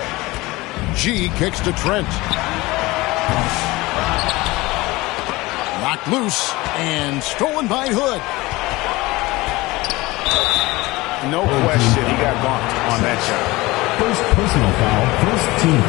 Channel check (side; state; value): right; quieter; 20.9 dB